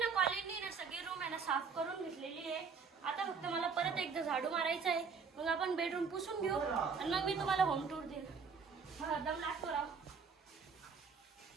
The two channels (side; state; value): left; quieter; 5.5 dB